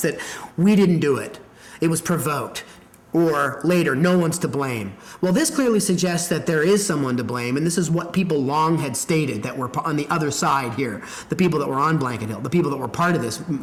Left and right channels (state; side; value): identical; both; correlation 1.00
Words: that we didn't do it. It was provoked. Or later, no one's to blame. Well, this clearly suggests that there is someone to blame, and this is what people long had stated that were on the other side here, the people that were on Blanket Hill, the people that were part of